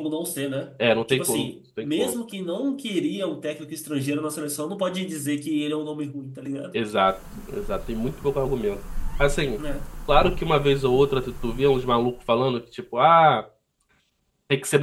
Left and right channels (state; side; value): identical; both; correlation 1.00